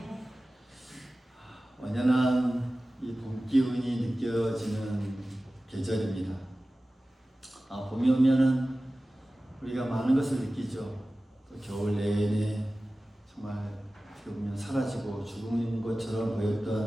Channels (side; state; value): both; normal; correlation 0.96